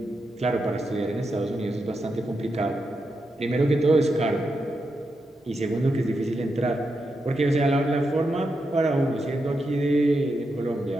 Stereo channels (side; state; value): both; normal; correlation 0.86